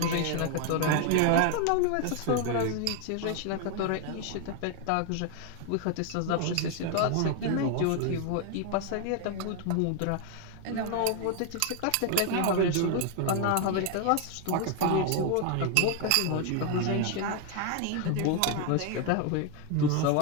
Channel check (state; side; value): different; both; correlation 0.01